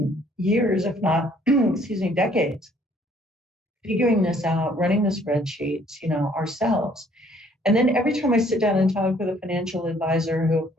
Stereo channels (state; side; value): normal; both; correlation 0.61